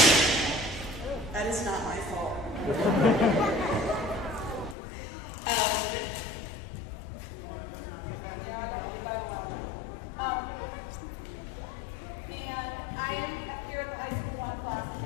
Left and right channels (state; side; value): drops out; right; at 4.8 s